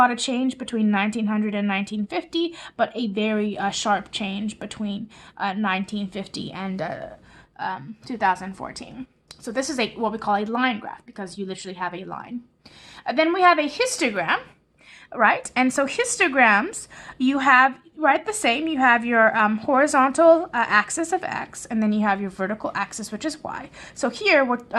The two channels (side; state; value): both; identical; correlation 1.00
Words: of change between 1900 and 1950, but a very sharp change between 1950 and 2014. So this is what we call a line graph because you literally have a line. Then we have a histogram, right? And so histograms, you have the same. You have your horizontal axis of x, and then you have your vertical axis, which is y. So here,